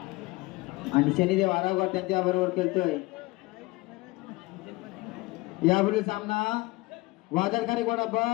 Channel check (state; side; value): quieter; right; 22.4 dB